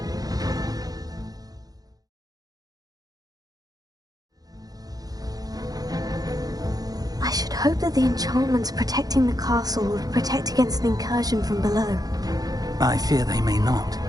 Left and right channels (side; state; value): left; late; 0.18 ms